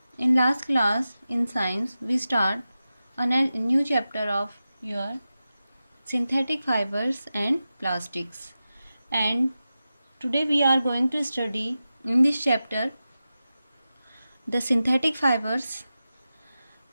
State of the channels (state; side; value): inverted; both; correlation -0.93